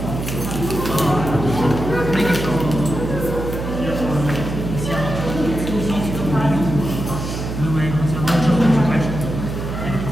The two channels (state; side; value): noise; right; hum, 5 dB below the sound